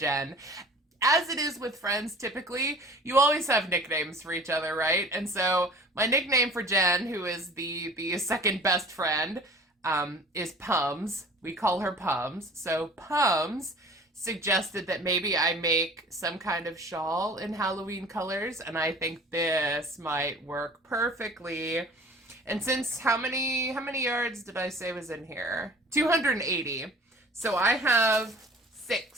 as it is with friends typically, you always have nicknames for each other, right? And so my nickname for Jen, who is the second best friend, is Pums. We call her Pums. So Pums suggested that maybe I make some kind of shawl in Halloween colors, and I think this might work perfectly. And since how many yards did I say was in here? 280. So I have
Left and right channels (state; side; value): normal; both; correlation 0.45